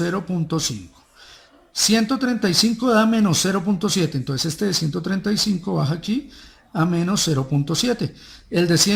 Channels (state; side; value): identical; both; correlation 1.00